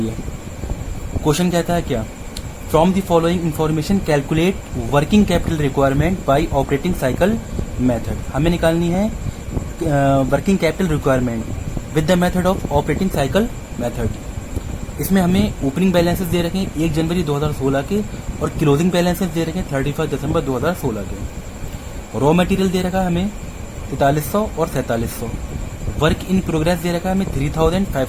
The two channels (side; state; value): both; identical; correlation 1.00